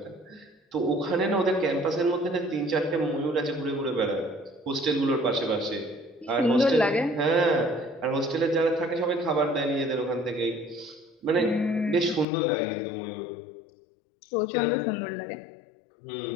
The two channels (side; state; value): right; drops out; at 12.2 s